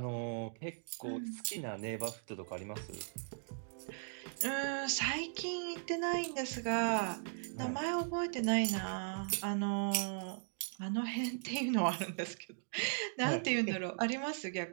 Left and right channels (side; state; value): left; silent; digital silence